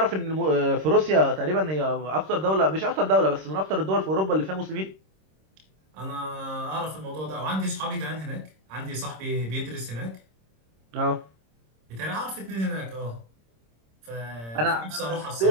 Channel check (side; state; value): left; late; 26 ms